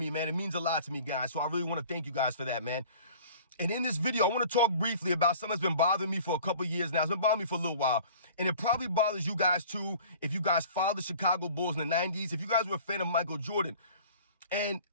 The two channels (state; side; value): inverted; both; correlation -0.46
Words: man. It means a lot to me, guys, so I really want to thank you guys for that, man. And in this video, I want to talk briefly about something that's been bothering me for a couple years now. It's been bothering me for a little while. And it probably bothers you guys too if you guys followed the Chicago Bulls in the 90s, if you guys were a fan of Michael Jordan. And